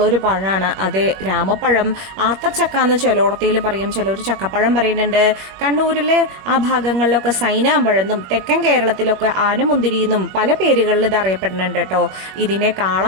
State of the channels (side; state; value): left; late; 21 ms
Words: ഒരു പഴമാണ് അത് രാമപ്പഴം. ആത്തച്ചക്ക എന്ന് ചിലോടത്തിയിൽ പറയും, ചിലർ ചക്കപ്പഴം പറയുന്നുണ്ട്. കണ്ണൂരിലെ ആ ഭാഗങ്ങളിലൊക്കെ സൈനാമ്പഴെന്നും തെക്കൻ കേരളത്തിലൊക്കെ ആനമുന്തിരി എന്നും പല പേരുകളിൽ ഇത് അറിയപ്പെടുന്നുണ്ട് കേട്ടോ. ഇതിനെ